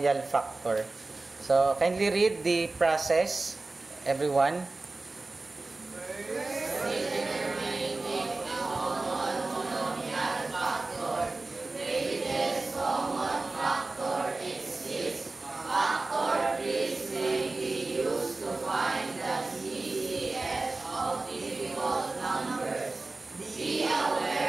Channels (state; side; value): quieter; left; 3.3 dB